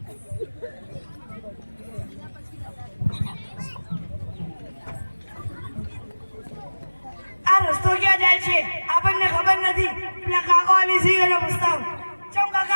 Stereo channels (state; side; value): inverted; both; correlation -1.00